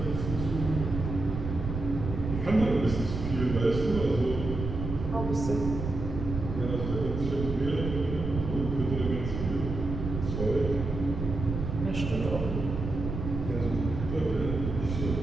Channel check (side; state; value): right; noise; rumble, 5 dB below the sound